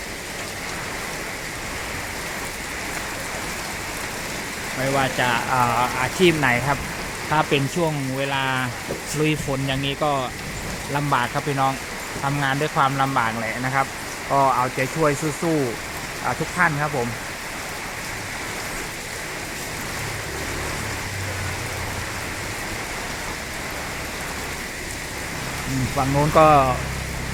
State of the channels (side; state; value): both; identical; correlation 1.00